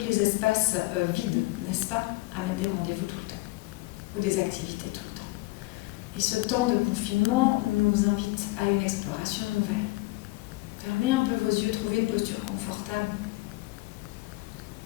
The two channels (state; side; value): quieter; right; 21.6 dB